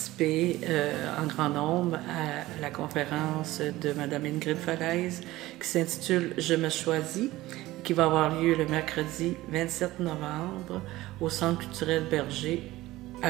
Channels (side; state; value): left; quieter; 17.5 dB